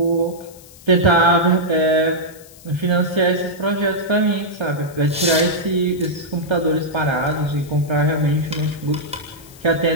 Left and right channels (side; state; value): left; noise; hiss, 22 dB below the sound